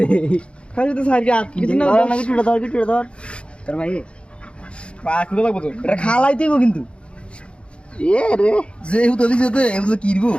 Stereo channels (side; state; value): right; late; 0.058 ms